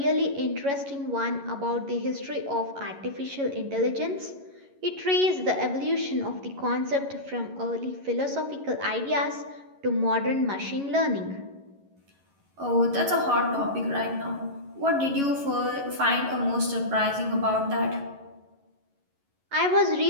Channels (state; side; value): late; left; 11 ms